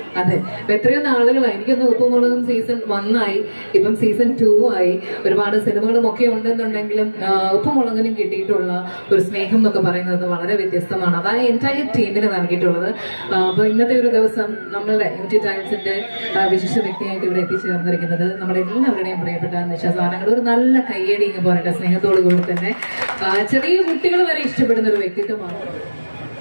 അതെ. അപ്പൊ എത്രയോ നാളുകളായി, എനിക്കൊന്ന് ഉപ്പുമുളകും സീസൺ 1 ആയി, ഇപ്പം സീസൺ 2 ആയി. ഒരുപാട് സിനിമകളും ഒക്കെ ഉണ്ടെന്നുണ്ടെങ്കിലും ഉപ്പുമുളകിനും കിട്ടിയിട്ടുള്ള ഒരു സ്നേഹം എന്നൊക്കെ പറയുന്നത് വളരെ വ്യത്യസ്തമാണ്. അതാണ് എൻറ്റയർ ടീമിന് നൽകിയിട്ടുള്ളത്. അപ്പൊ ഇന്നത്തെ ഒരു ദിവസം നമ്മളുടെ യൂണിറ്റി ടൈൽസിന്റെ വിശിഷ്ട വ്യക്തിയായിട്ട് ഇവിടെ എത്തിച്ചേർന്നിരിക്കുന്നത് നമ്മുടെ എല്ലാവരുടെയും പ്രിയപ്പെട്ട നിശാസാരങ്ങൾ. ഒരു നല്ല കയ്യടി എന്ന് പറയട്ടെ, സ്നേഹത്തോടു കൂടി തന്നെ ചെറിയ കുട്ടികൾ വരെ ഇഷ്ടപ്പെടുന്ന ഒരു വ്യക്തിത്വമാണ്.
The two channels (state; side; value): inverted; both; correlation -1.00